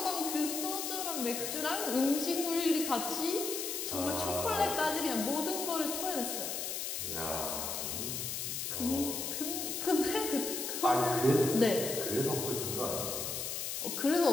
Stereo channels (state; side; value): noise; left; hiss, 3 dB below the sound